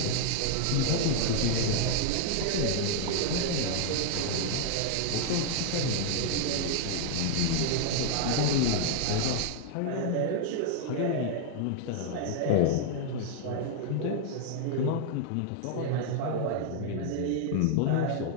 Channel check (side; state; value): both; different; correlation -0.01